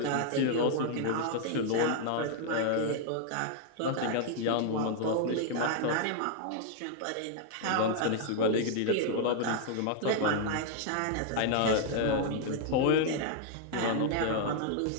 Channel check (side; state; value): both; different; correlation 0.00